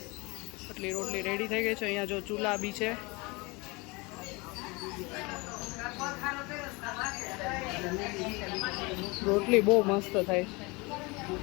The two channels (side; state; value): right; quieter; 25.9 dB